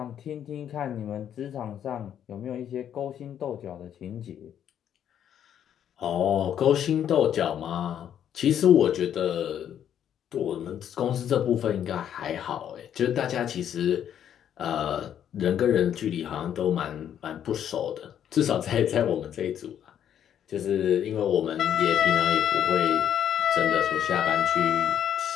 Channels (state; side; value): quieter; right; 9.7 dB